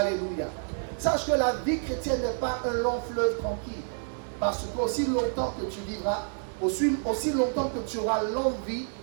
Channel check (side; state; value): left; silent; digital silence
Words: Sache que la vie chrétienne n'est pas un long fleuve tranquille, parce qu'aussi longtemps que tu vivras, aussi longtemps que tu auras l'envie